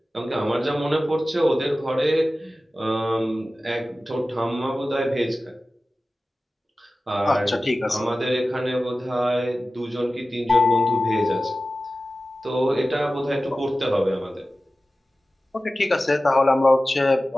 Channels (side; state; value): both; normal; correlation 0.96